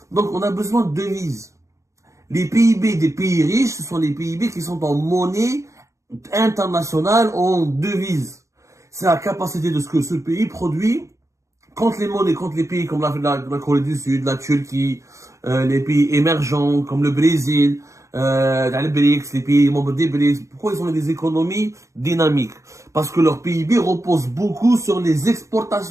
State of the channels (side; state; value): left; late; 0.15 ms